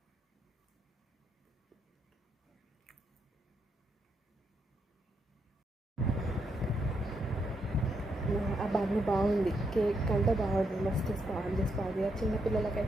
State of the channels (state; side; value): normal; both; correlation 0.79